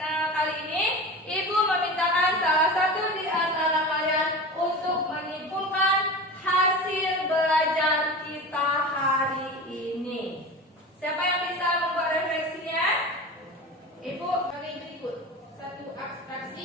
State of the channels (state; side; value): normal; both; correlation 0.31